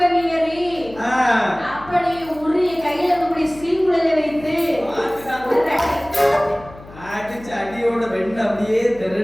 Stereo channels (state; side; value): noise; left; hum, 19 dB below the sound